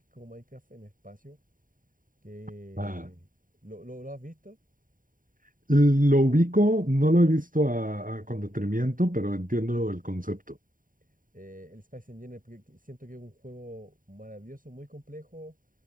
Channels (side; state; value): left; late; 0.40 ms